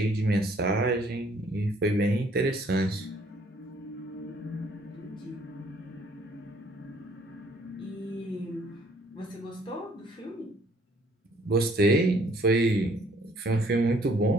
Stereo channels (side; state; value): both; normal; correlation 0.62